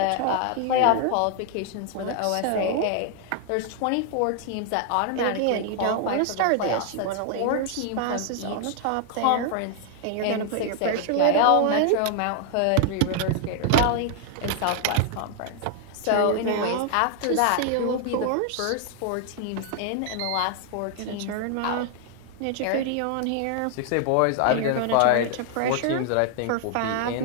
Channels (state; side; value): different; both; correlation 0.00